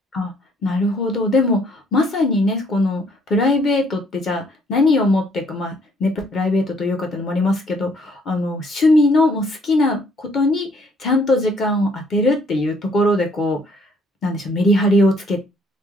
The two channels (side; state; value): both; normal; correlation 0.64